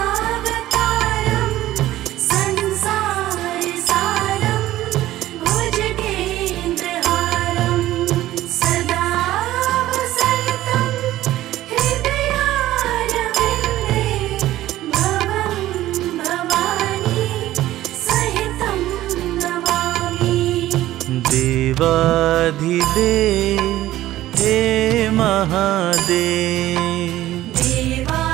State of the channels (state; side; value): quieter; left; 14.8 dB